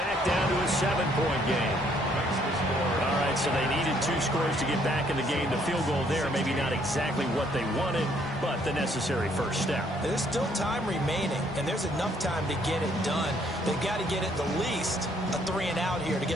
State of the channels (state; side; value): normal; both; correlation 0.66